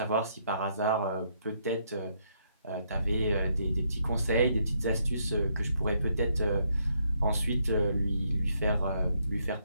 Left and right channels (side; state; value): both; inverted; correlation -0.74